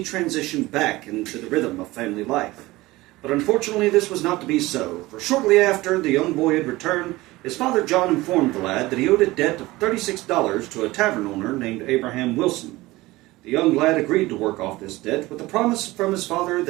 transition back into the rhythm of family life. But unfortunately, this was not to be so, for shortly after the young boy had returned, his father John informed the lad that he owed a debt of $36 to a tavern owner named Abraham Wilson. The young lad agreed to work off this debt with the promise from his father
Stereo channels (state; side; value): quieter; left; 19.5 dB